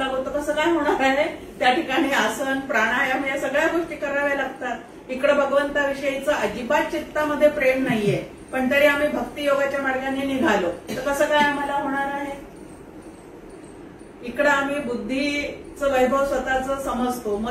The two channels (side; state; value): both; identical; correlation 1.00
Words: तर कसं काय होणार आहे? त्या ठिकाणी आसन, प्राणायाम या सगळ्या गोष्टी कराव्या लागतात. इकडे भगवंताविषयीचं अजिबात चित्तामध्ये प्रेम नाहीये पण तरी आम्ही भक्ती योगाच्या मार्गाने निघालो तर कसं काय आम्हाला होणार आहे? इकडं आम्ही बुद्धीचं वैभव स्वतःच समजतो,